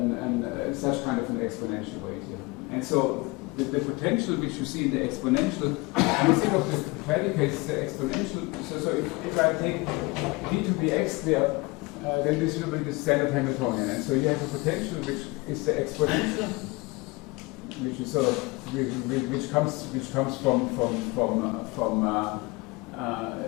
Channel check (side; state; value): right; quieter; 24.8 dB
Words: such kind of an exponential weight here. And so the potential which you see in the exponential, you think of the predicate as the exponential. So if I take d to be x squared, then this will be the standard Hamiltonian. And so you have a potential which is the exponential, which is sort of which comes